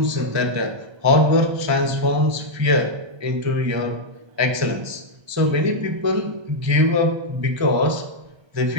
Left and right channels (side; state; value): left; late; 1.3 ms